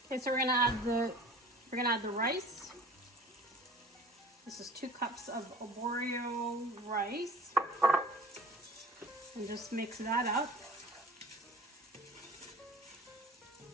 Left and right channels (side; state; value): both; normal; correlation 0.43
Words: Okay, so we're gonna add the rice. This is 2 cups of arborio rice. And just mix that up.